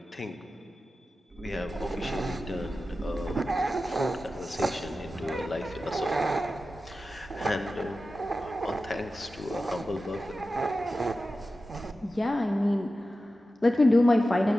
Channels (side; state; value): both; normal; correlation 0.93